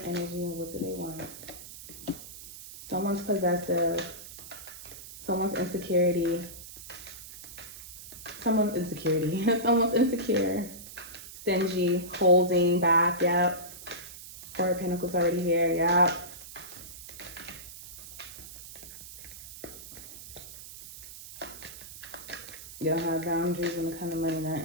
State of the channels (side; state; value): right; noise; hiss, 14 dB below the sound